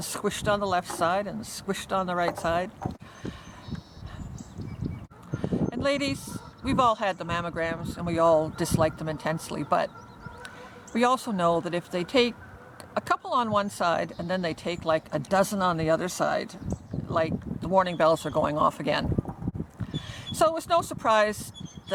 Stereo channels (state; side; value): identical; both; correlation 1.00